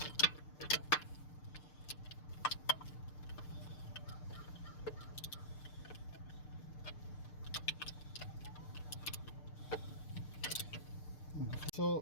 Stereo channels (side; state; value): right; late; 6.7 ms